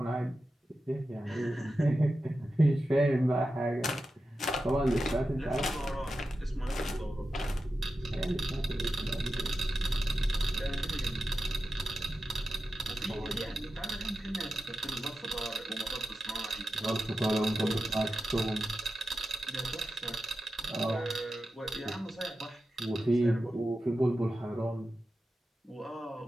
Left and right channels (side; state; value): both; normal; correlation 0.91